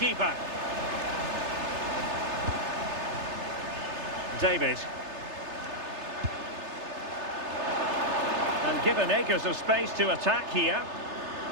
David. And given acres of space to attack here.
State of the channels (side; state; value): left; late; 3.3 ms